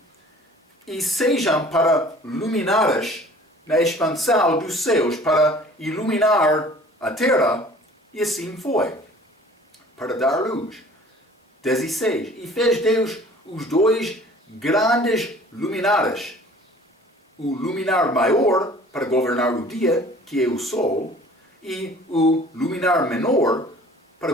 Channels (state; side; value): normal; both; correlation 0.49